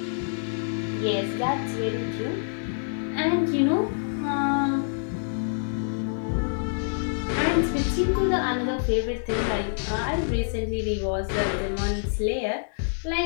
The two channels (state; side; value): silent; right; digital silence